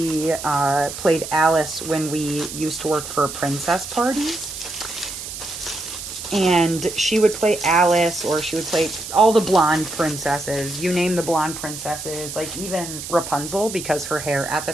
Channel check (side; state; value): right; noise; hiss, 9 dB below the sound